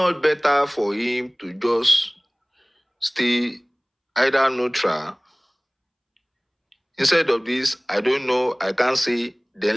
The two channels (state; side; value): identical; both; correlation 1.00